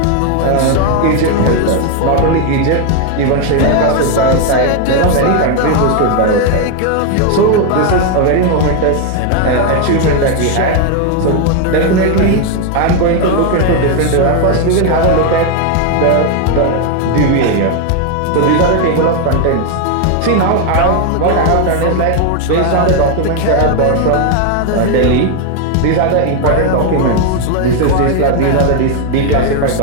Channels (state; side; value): different; both; correlation 0.01